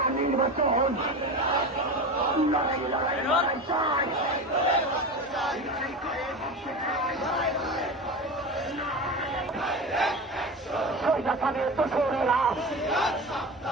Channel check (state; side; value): normal; both; correlation 0.26